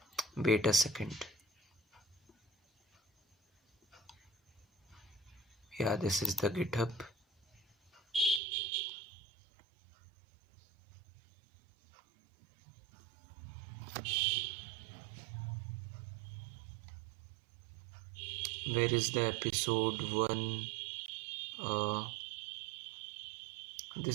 Wait a second. Yeah, this is the GitHub. Where is the episode 1?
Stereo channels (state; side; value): drops out; left; at 8.4 s